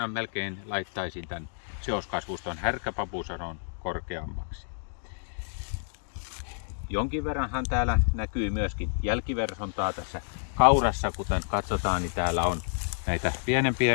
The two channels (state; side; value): silent; right; digital silence